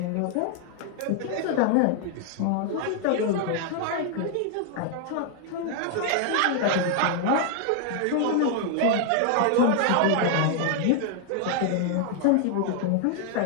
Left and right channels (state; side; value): different; both; correlation 0.00